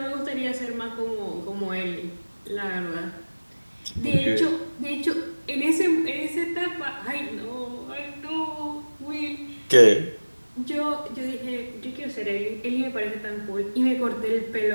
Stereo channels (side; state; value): both; inverted; correlation -1.00